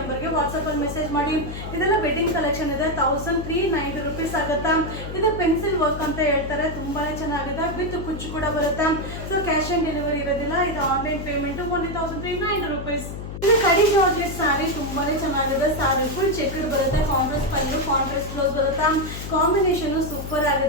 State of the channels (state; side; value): noise; left; hum, 8 dB below the sound